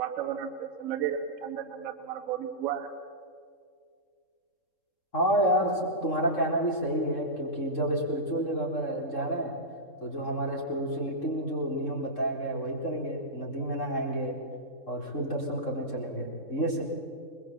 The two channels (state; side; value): late; right; 3.7 ms